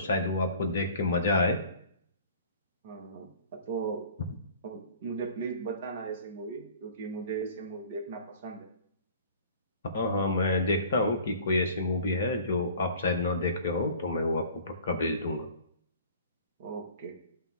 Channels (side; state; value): both; inverted; correlation -0.47